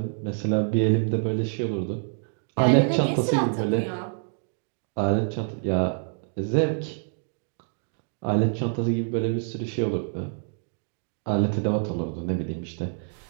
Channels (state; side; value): silent; left; digital silence